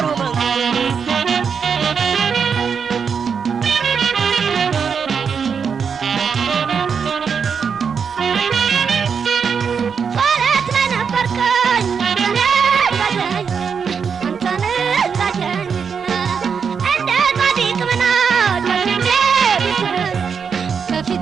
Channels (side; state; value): left; quieter; 6.3 dB